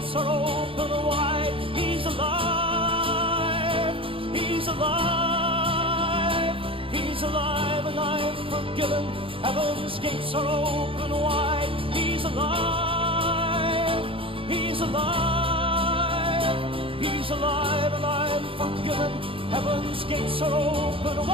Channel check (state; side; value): late; left; 0.26 ms